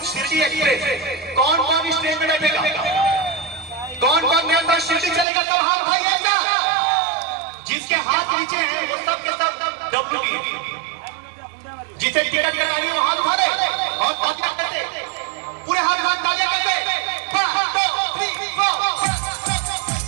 Shirdi express. कौन कौन इस ट्रेन में बैठेगा? कौन कौन मेरे साथ शिरडी चलेगा? सब हाथ उठाइए। जिसके हाथ नीचे हैं वो सब के सब डब्ल्यू जिसे टिकट लगानी वो हाथ उठा रहे और तालियां करते, पूरे हाथ तालियां करते। 1 2 3 4।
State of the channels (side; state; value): left; drops out; at 5.2 s